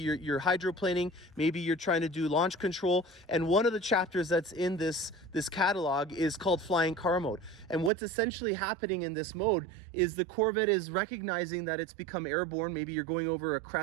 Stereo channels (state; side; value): drops out; left; at 7.9 s